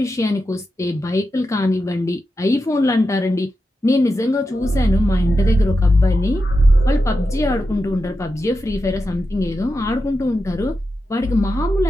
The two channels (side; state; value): both; normal; correlation 0.90